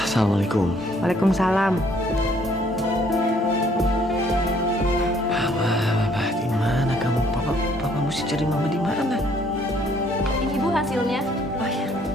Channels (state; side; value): normal; both; correlation 0.63